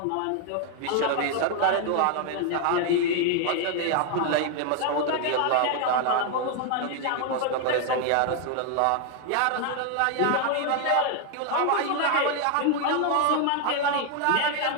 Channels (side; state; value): both; different; correlation 0.00